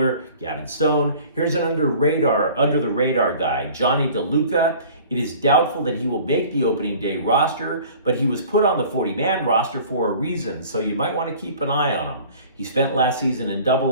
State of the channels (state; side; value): inverted; both; correlation -0.47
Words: Gavin Stone. Here's an under the radar guy, Johnny DeLuca. It is doubtful that he will make the opening day roster, but he was put on the 40-man roster for a reason, so you might want to keep an eye on him. He spent last season in